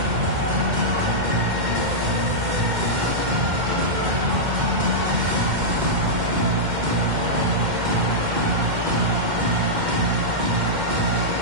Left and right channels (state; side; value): late; left; 2.1 ms